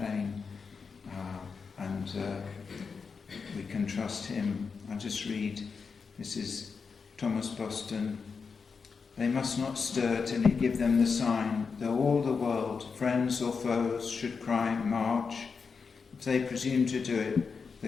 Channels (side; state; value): right; quieter; 5.3 dB